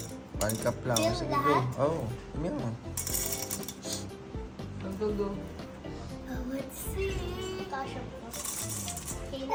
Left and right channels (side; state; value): both; identical; correlation 1.00